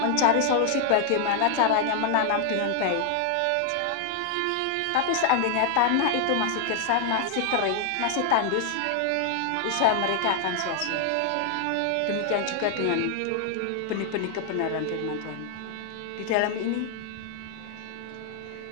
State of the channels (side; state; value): both; different; correlation 0.00